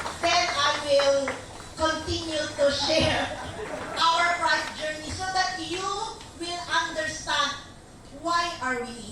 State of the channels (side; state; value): both; identical; correlation 1.00